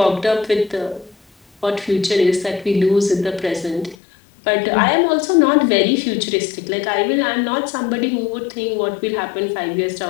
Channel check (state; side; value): drops out; right; at 4.0 s